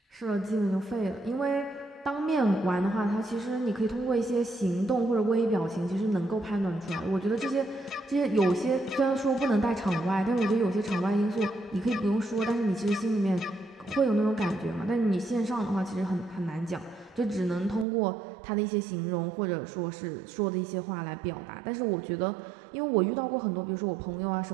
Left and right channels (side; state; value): left; drops out; at 17.9 s